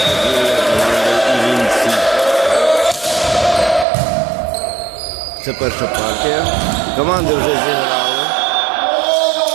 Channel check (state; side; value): drops out; left; at 3.9 s